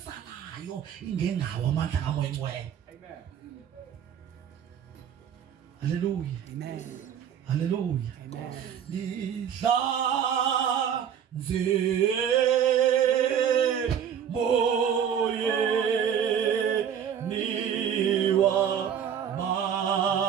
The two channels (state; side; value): quieter; left; 8.6 dB